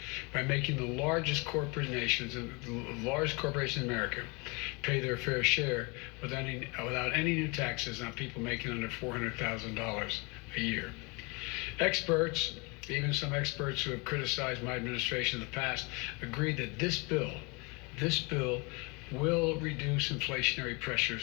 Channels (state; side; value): quieter; right; 28.3 dB